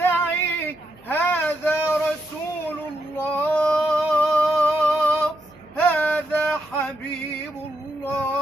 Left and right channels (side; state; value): right; noise; hum, 27 dB below the sound